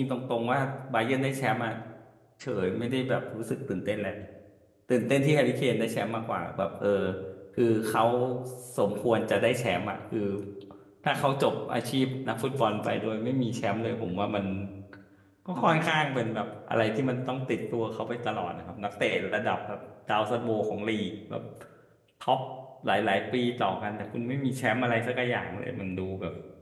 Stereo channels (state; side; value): identical; both; correlation 1.00